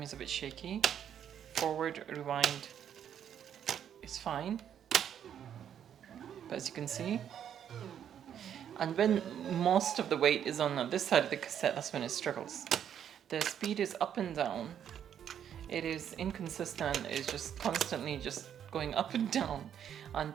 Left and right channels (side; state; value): left; quieter; 9.3 dB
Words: a bit shaky. Forward rewind is fine, but as you can see, and when most of the weight is on this side of the cassette, that's when it struggles. The speed is up and down. It is inconsistent. It's just constantly just going up and down,